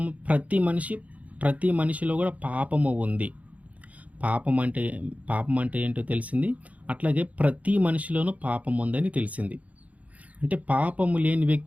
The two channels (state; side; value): late; left; 0.070 ms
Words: ప్రతి మనిషిలో కూడా పాపము ఉంది. పాపం అంటే ఏంటో తెలిసింది. అట్లాగే ప్రతి మనిషిలోనూ పాపం ఉందని తెలిసింది. అంటే పాపము లేని